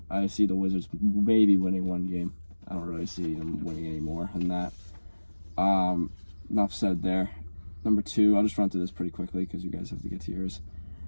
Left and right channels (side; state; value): both; inverted; correlation -1.00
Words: I see the Wizards maybe winning one game. I don't really see them winning any more than that. Enough said there. Number 2, I'll just run through this pretty quickly because you guys have to get to yours.